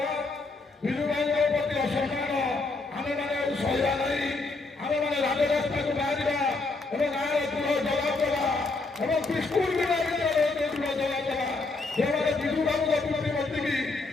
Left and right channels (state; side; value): quieter; right; 3.5 dB